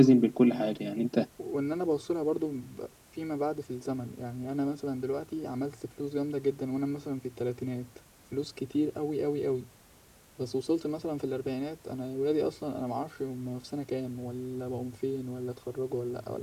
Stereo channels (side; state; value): both; identical; correlation 1.00